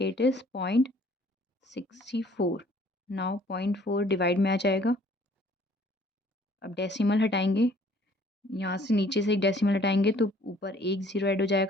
is 0.64. Now 0.4 divide में आ जाएगा. अब decimal हटाएंगे, यहाँ से नीचे से एक decimal हटाएंगे तो ऊपर एक ज़ीरो ऐड हो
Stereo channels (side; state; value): both; normal; correlation 0.57